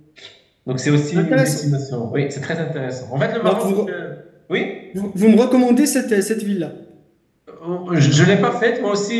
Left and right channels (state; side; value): identical; both; correlation 1.00